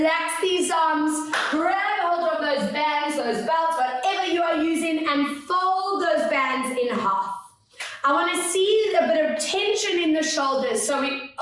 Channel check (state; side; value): identical; both; correlation 1.00